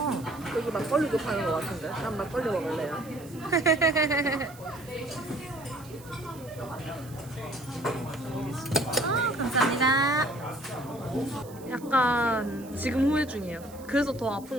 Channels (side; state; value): right; noise; hiss, 21 dB below the sound